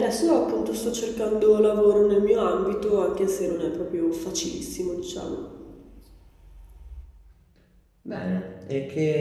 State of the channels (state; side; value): identical; both; correlation 1.00